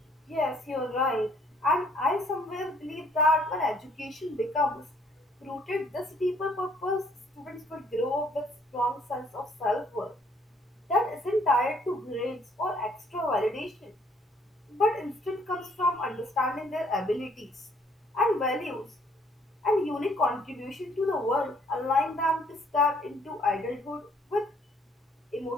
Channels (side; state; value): both; normal; correlation 0.63